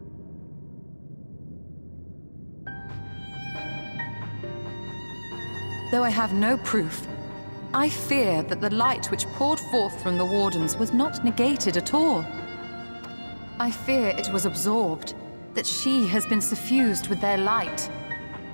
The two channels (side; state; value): both; inverted; correlation -1.00